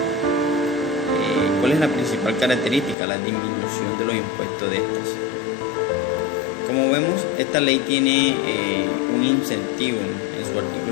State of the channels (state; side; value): drops out; right; at 3.0 s